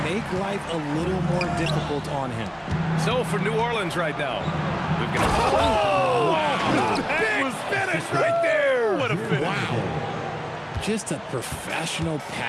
make life a little more difficult on him. So for New Orleans right now, we've got Wow. big finish right there. What a finish. Wow. Just a professional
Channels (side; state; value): both; identical; correlation 1.00